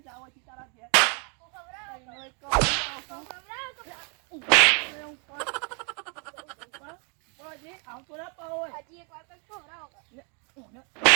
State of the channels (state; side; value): quieter; left; 38.1 dB